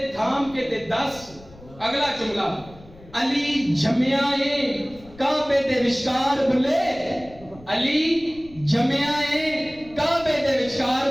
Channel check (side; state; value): left; noise; rumble, 22 dB below the sound